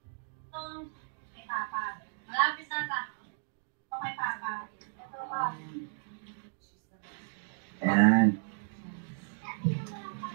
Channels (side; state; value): left; silent; digital silence